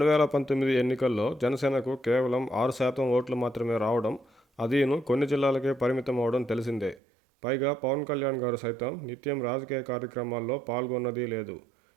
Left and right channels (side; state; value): left; drops out; at 7.0 s